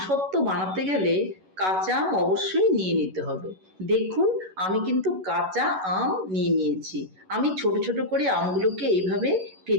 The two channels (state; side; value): late; left; 11 ms